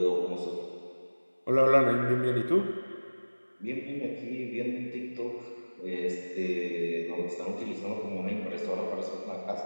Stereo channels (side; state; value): both; inverted; correlation -1.00